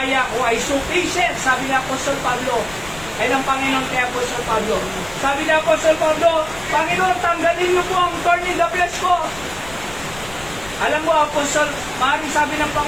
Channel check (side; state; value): left; noise; rumble, 17 dB below the sound